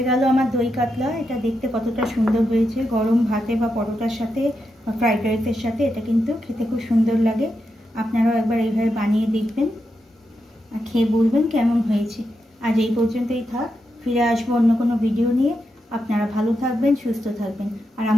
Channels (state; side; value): normal; both; correlation 0.86